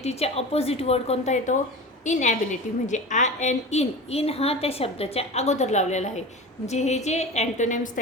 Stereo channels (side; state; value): both; normal; correlation 0.31